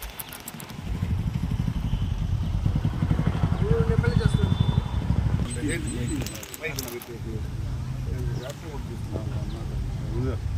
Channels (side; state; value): both; identical; correlation 1.00